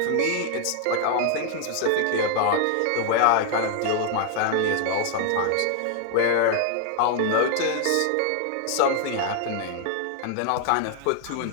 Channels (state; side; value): different; both; correlation 0.00